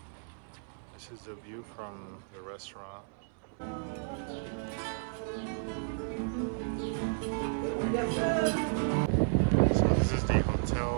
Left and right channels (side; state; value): left; silent; 56 dB below the other